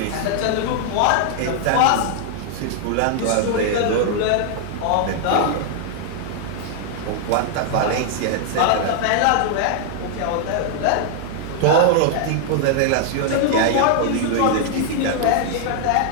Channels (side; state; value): both; different; correlation -0.01